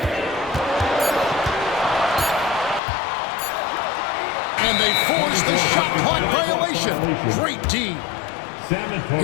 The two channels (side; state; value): right; drops out; at 2.8 s